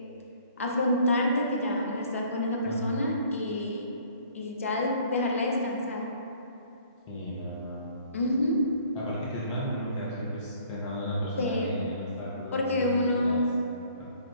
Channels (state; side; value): inverted; both; correlation -0.57